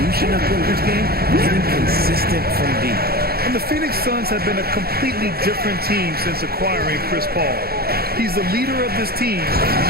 of Booker's game, getting consistent from deep. And the Phoenix Suns have been a completely different team since acquiring Chris Paul. He's the leader of this team, and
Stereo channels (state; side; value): late; left; 0.45 ms